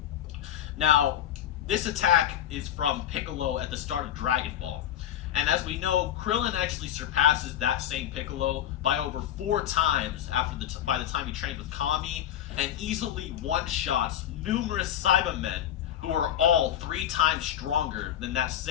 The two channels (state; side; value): quieter; right; 10.9 dB